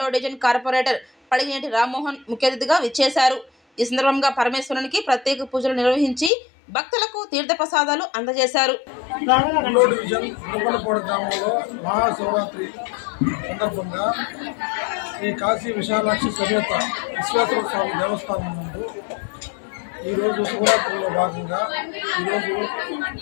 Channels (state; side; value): drops out; right; at 6.3 s